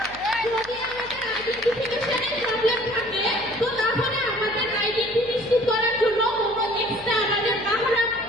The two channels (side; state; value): left; noise; hum, 21 dB below the sound